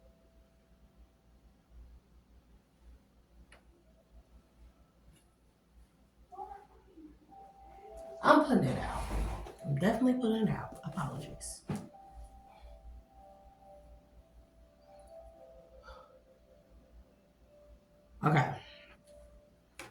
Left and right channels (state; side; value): identical; both; correlation 1.00